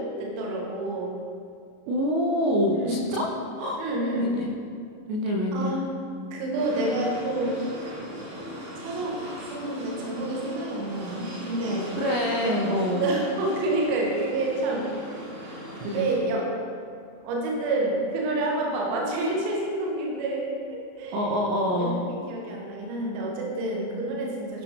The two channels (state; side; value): late; left; 33 ms